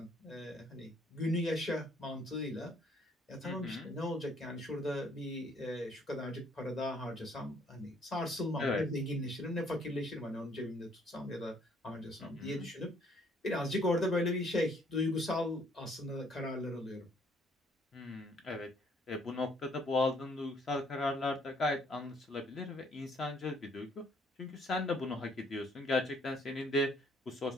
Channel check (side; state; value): both; normal; correlation 0.64